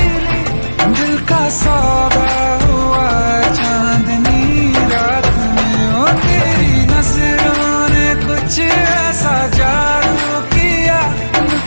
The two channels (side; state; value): both; inverted; correlation -1.00